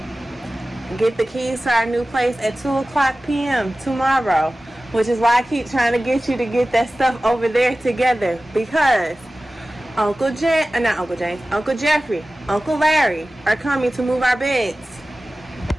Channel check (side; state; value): both; normal; correlation 0.96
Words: Get the keys to our new place at 2:00 p.m. tomorrow, which is why I keep trying to get you to get that stuff over there together, because Uncle Jeffrey, Uncle Larry are coming to move our beds